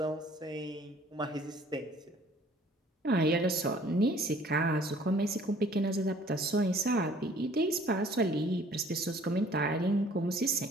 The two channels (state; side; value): normal; both; correlation 0.55